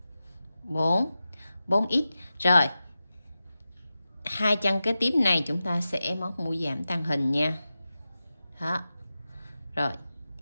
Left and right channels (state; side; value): inverted; both; correlation -0.93